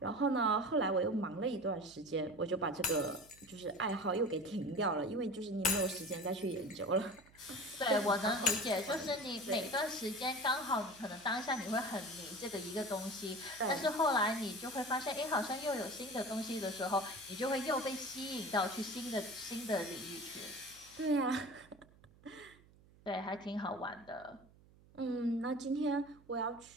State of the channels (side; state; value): right; noise; hum, 26 dB below the sound